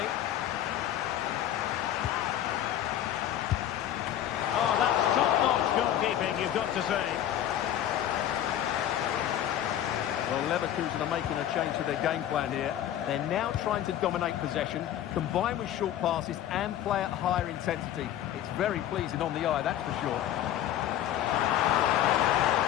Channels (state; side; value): quieter; right; 11.5 dB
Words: Oh, that's top-notch goalkeeping, you've got to say. Well, Leverkusen are making a change to their game plan here. They're now trying to dominate possession, combine with short passes and play at higher intensity. It's very pleasing on the eye, that's for sure.